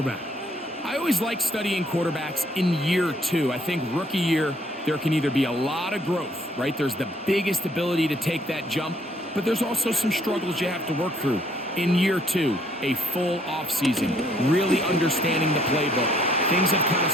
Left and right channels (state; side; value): normal; both; correlation 0.65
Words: I always like studying quarterbacks in year 2. I think rookie year, there can either be a lot of growth, right? There's the biggest ability to take that jump, but there's also some struggles you have to work through. In year 2, a full offseason, really understanding the playbook. Things have kind of